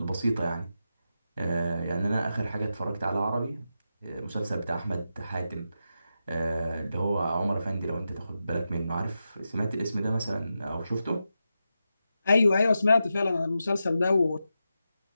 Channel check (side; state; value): both; inverted; correlation -0.89